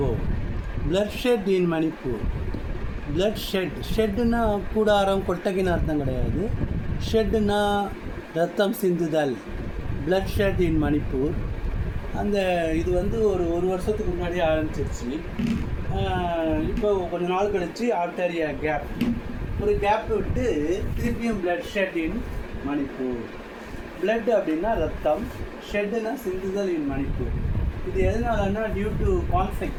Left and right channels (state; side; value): identical; both; correlation 1.00